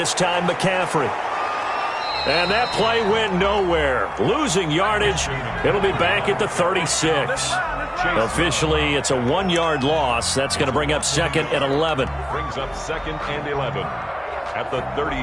time McCaffrey. And that play went nowhere. Losing yardage. It'll be back at the 36. Officially, it's a 1-yard loss. That's going to bring up second and 11. Brings up second and 11 at the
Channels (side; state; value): both; identical; correlation 1.00